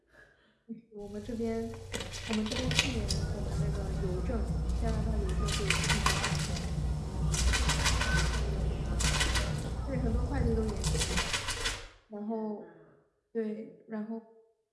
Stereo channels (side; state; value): both; identical; correlation 1.00